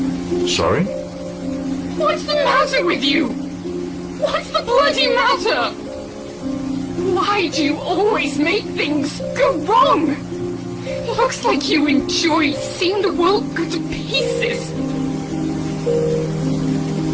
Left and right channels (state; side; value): identical; both; correlation 1.00